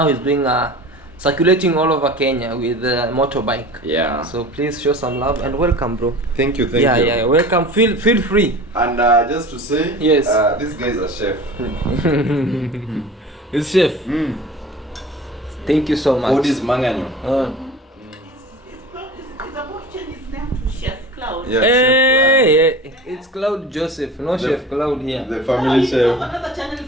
he's doing circulating all over Kenya with a motorbike. Yeah. So please show some love and welcome, bro. Thank you. Yeah, welcome. Feel free. And just to say, yes, this guy is a chef. He's chef. Thank you so much. What is Manganyo? Claude. Yeah, hey, it's Claude Joseph, no Chef Claude here. The family chef. Another channel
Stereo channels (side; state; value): both; normal; correlation 0.38